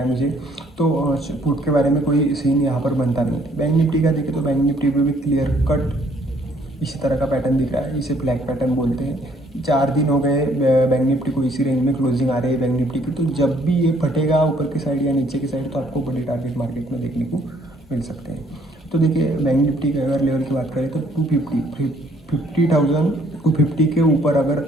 मुझे। तो पुट के बारे में कोई सीन यहाँ पर बनता नहीं है। बैंक निफ्टी का देखें तो बैंक निफ्टी पे भी क्लियर कट इसी तरह का पैटर्न दिख रहा है, इसे फ्लैग पैटर्न बोलते हैं। 4 दिन हो गए बैंक निफ्टी को इसी रेंज में क्लोजिंग आ रही है बैंक निफ्टी की। तो जब भी ये फटेगा ऊपर की साइड या नीचे की साइड, तो आपको बड़े टारगेट मार्केट में देखने को मिल सकते हैं। तो देखिए बैंक निफ्टी के अगर लेवल की बात करें तो 50,000 के ऊपर अगर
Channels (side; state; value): both; normal; correlation 0.63